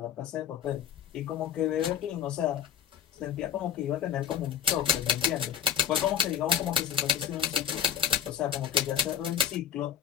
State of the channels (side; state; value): right; quieter; 8.8 dB